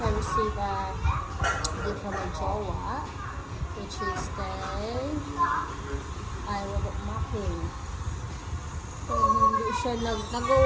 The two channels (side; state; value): both; identical; correlation 1.00